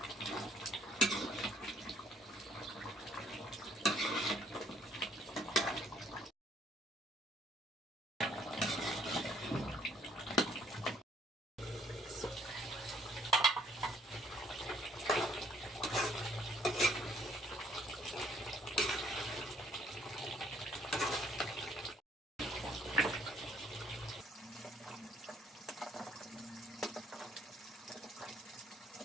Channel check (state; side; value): normal; both; correlation 0.64